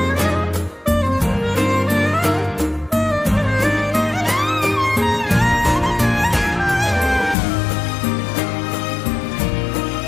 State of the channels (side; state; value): right; drops out; at 7.4 s